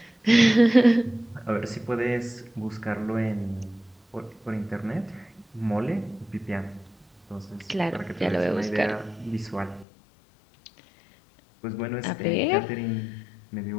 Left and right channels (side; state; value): right; drops out; at 9.9 s